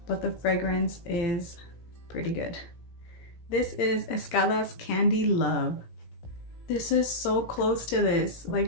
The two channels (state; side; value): late; right; 17 ms